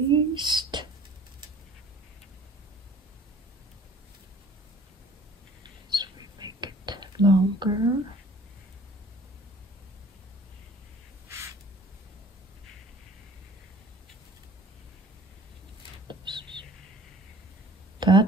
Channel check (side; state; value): both; normal; correlation 0.49